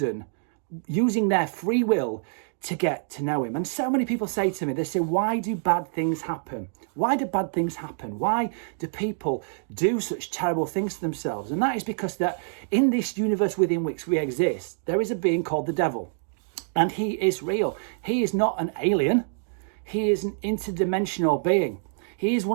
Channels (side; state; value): left; silent; digital silence